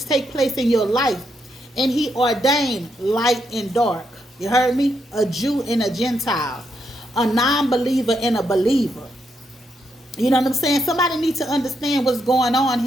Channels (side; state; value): both; normal; correlation 0.80